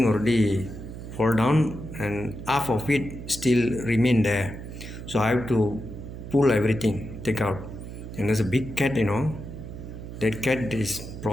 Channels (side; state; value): right; noise; hum, 10 dB below the sound